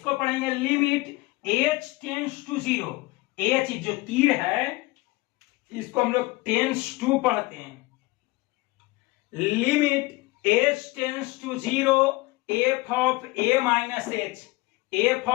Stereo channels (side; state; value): right; quieter; 21.8 dB